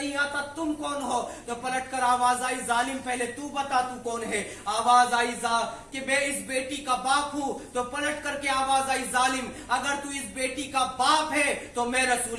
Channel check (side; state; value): both; identical; correlation 1.00